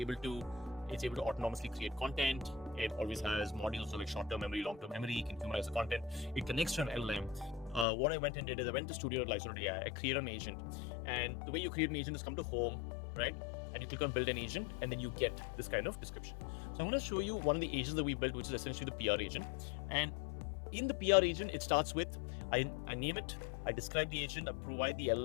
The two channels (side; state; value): right; drops out; at 7.9 s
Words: it's able to autonomously create content. It always has modules, so like short-term memory, long-term memory. You can humanize the content. It connects to an LLM. What I went and did is I went to Studio and Lyzr AI. I created an agent. And the way you create an agent is come to home, right? And you click on build an agent, and then you get this kind of description. So I'm going to show you one of the agents that we built, which is essentially the PR agent. And in the PR agent, it starts with, I name it, I describe the agent, I provide the